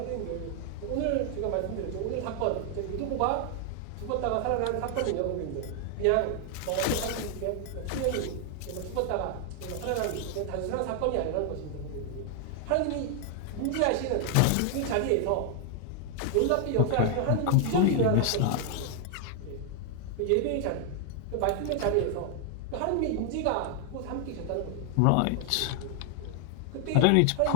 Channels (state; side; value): different; both; correlation 0.00